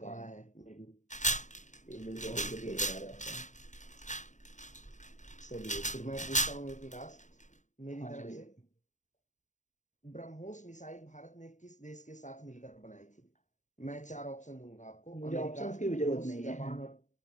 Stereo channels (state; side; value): late; right; 0.35 ms